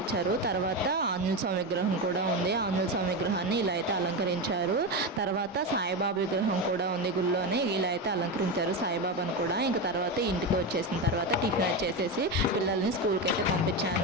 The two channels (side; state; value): both; normal; correlation 0.16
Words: తర్వాత ఆంజనేయ స్వామి విగ్రహం కూడా ఉంది. ఆంజనేయ స్వామి విగ్రహాన్ని ఇలా అయితే అలంకరించారు. తర్వాత సాయిబాబా విగ్రహం కూడా ఉంది గుళ్ళోనే, ఇలా అయితే అలంకరించారు సాయిబాబాను కూడా. ఇంకా తర్వాత ఇంటికి వచ్చేసిన తర్వాత టిఫిన్ వచ్చేసేసి పిల్లల్ని స్కూల్కి అయితే